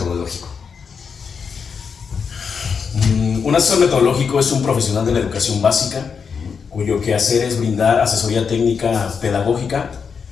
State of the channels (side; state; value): right; quieter; 6.1 dB